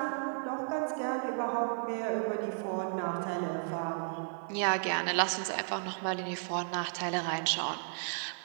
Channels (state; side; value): silent; left; digital silence